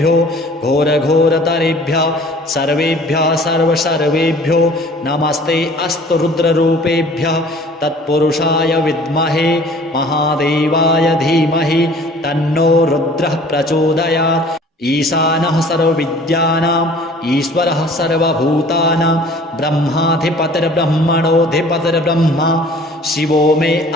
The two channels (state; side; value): normal; both; correlation 0.49